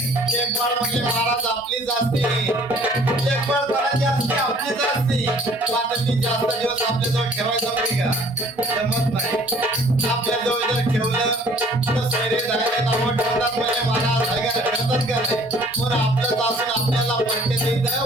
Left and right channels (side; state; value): both; normal; correlation 0.55